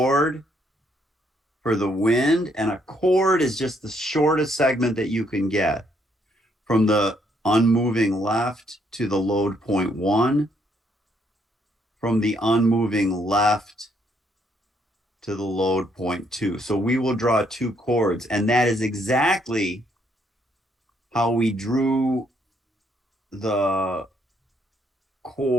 for the wind, and a chord is just the shortest segment that you can get from the unmoving left to the load point 1, from the unmoving left to the load point 2. So we will draw 2 chords, and that is exactly how we drew the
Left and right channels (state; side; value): normal; both; correlation 0.71